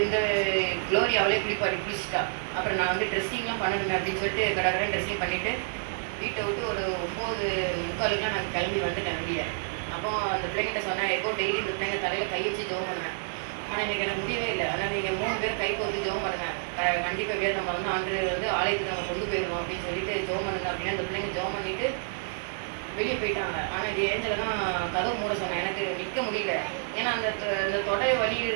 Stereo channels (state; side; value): silent; left; digital silence